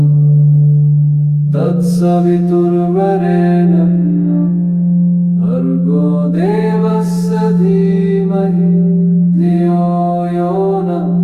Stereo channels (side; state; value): both; identical; correlation 1.00